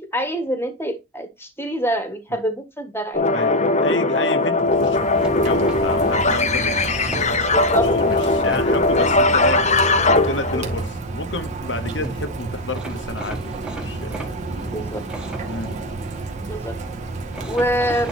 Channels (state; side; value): normal; both; correlation 0.06